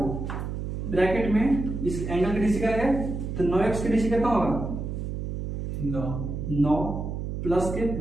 ब्रैकेट में इस एंगल की डीसी करेंगे तो 9x की डीसी कितना होगा 9 प्लस के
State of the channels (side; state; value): right; noise; hum, 4 dB below the sound